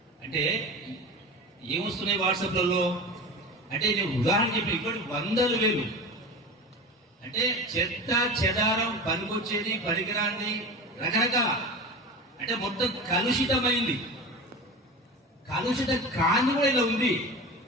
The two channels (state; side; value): normal; both; correlation 0.30